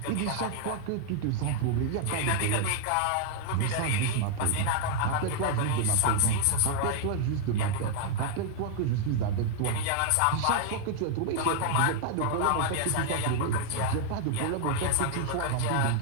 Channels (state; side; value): different; both; correlation 0.00